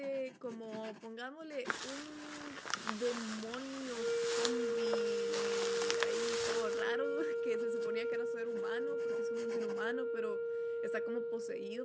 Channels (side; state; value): both; identical; correlation 1.00